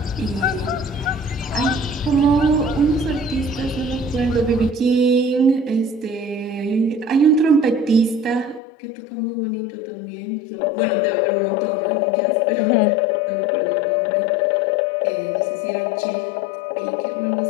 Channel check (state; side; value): drops out; right; at 8.6 s